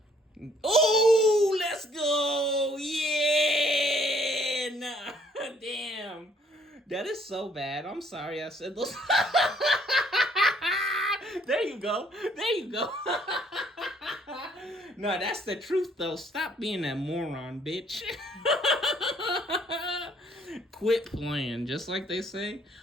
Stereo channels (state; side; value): normal; both; correlation 0.64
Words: Oh, let's go! Yeah! Nah, damn. That is so bad. I'm sorry I said those. There you go. There you go. No, that's the truth, though. Stop being that moron, bitch. Quit playing, just like they say.